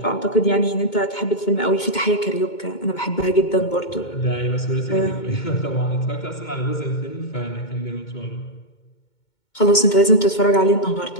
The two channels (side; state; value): right; late; 2.2 ms